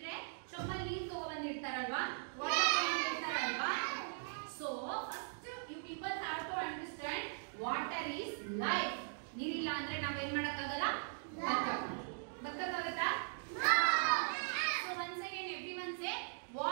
ಚೊಮ್ಮಲ್ಲಿ ನೀರು ತಗೊಂಡ್ಬಂದಿರ್ತಾರಲ್ವಾ, ವಾಟರ್ ತಗೊಂಡಿರ್ತಾರಲ್ವಾ. So first you people have to understand water is life. ನೀರಿಲ್ಲ ಅಂದ್ರೆ ನಾವೇನ್ ಮಾಡಕ್ಕಾಗಲ್ಲ, ಬದುಕಕ್ಕಾಗತ್ತಾ? So once again everyone say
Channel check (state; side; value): silent; left; digital silence